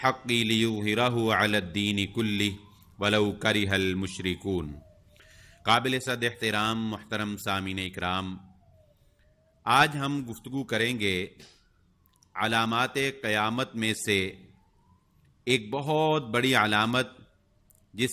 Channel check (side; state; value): both; identical; correlation 1.00